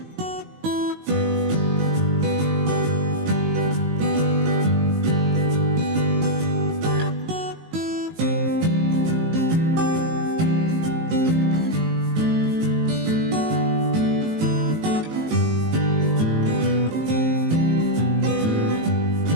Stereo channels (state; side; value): late; left; 19 ms